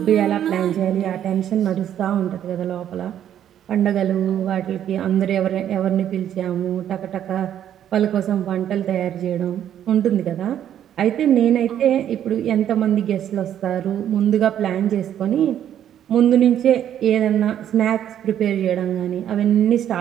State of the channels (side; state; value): left; quieter; 10.4 dB